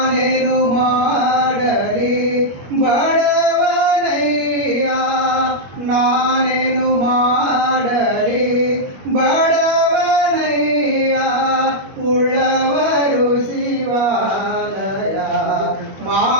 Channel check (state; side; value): late; left; 21 ms